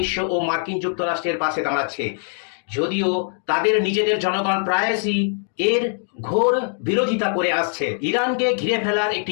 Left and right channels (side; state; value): right; silent; 58 dB below the other